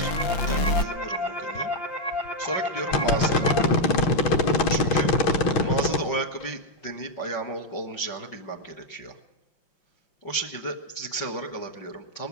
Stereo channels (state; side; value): late; right; 5.7 ms